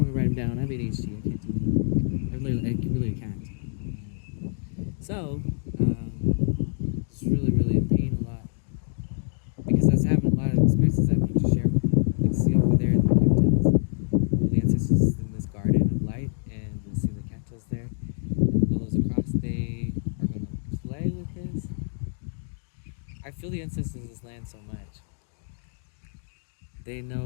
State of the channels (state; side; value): silent; right; digital silence